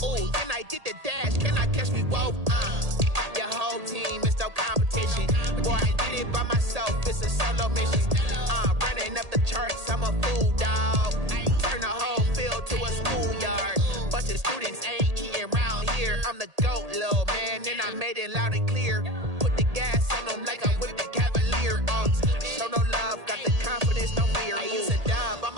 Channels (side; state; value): left; late; 1.8 ms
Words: Ooh, then I did the dash, can I catch me whoa? Your whole team is no competition. Boy, I did it by myself, it's a solo mission. Running up the charts, I'm a fool, dog. Turn the whole field to a schoolyard. Bunch of students ain't eating round here. I'm the GOAT, little man, and I made it loud and clear. Put the gas on them like I'm with the Cavalier. Show no love, got the confidence, no fear. I use a dub,